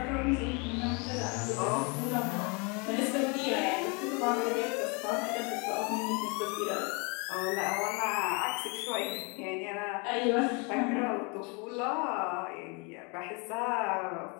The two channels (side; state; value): right; quieter; 31.7 dB